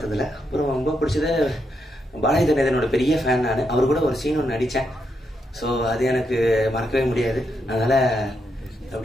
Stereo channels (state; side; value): normal; both; correlation 0.81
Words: அப்புறம் ரொம்ப பிடிச்சது பாலாஜி கணேசனோட பெரிய ஃபேன் நான். அவர் கூட ஒரு சீன் ஒன்று நடித்தேன். ஸோ அது எனக்கு மறக்கவே முடியாது. அதனால்